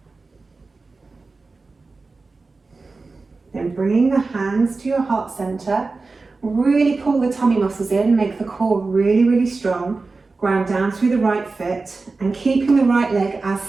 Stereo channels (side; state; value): left; quieter; 3.9 dB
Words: Then bringing the hands to your heart center, really pull the tummy muscles in, make the core really, really strong. Ground down through the right foot and keeping the right leg as